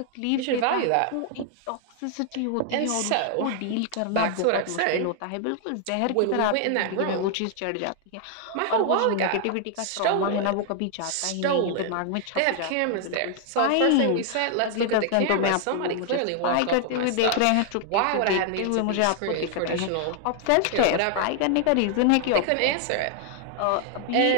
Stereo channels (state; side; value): different; both; correlation 0.00